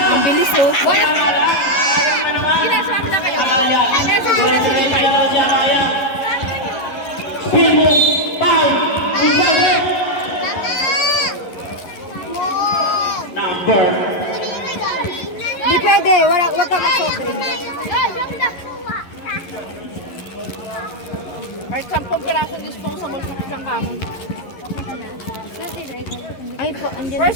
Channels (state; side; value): late; right; 11 ms